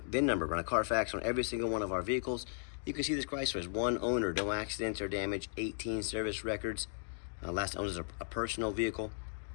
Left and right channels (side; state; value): right; silent; digital silence